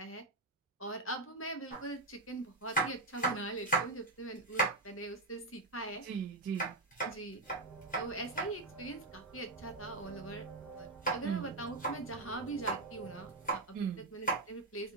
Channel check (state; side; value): quieter; left; 3.1 dB